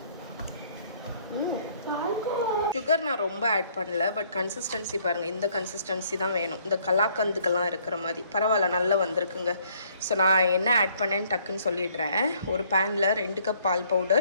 சுகர் நான் ரொம்ப ஆட் பண்ணல, பட் கன்சிஸ்டன்சி பாருங்கள், இந்த கன்சிஸ்டன்சி தான் வேணும். இந்த கலாக்கந்துக்கெல்லாம் இருக்கிற மாதிரி பரவாயில்ல, நல்லா வந்திருக்குங்க. ஸோ நான் என்ன ஆட் பண்ணேன்னு டக்குன்னு சொல்லிடுறேன். ஒரு பேனில் 2 கப் பால்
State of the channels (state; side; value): inverted; both; correlation -0.63